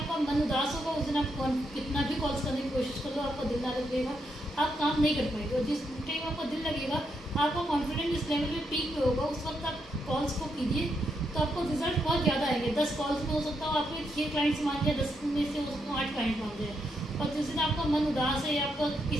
मन उदास होगा उस दिन आप कितना भी कॉल्स करने की कोशिश कर लो आपका दिल ना लगेगा, आप काम नहीं कर पाएंगे। और जिस टाइम आपका दिल लगेगा आपका कॉन्फिडेंस इस लेवल पे पीक पे होगा, उस वक्त आप कॉल्स को कीजिए तो आपको रिजल्ट बहुत ज़्यादा आएंगे। 10 कॉल्स में हो सकता हो आपके 6 क्लाइंट्स मान जाए, 10 में से हो सकता हो 8 क्लाइंट मान जाए। और जिस दिन आपका मन उदास है या आपका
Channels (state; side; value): normal; both; correlation 0.80